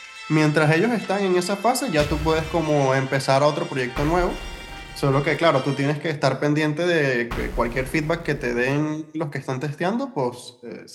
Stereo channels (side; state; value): both; identical; correlation 1.00